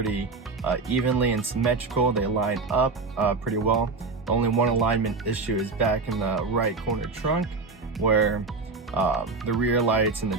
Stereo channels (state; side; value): quieter; left; 4.1 dB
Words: evenly and symmetrical. They line up pretty well. The only one alignment issue is back in the right corner trunk, where the rear lights in the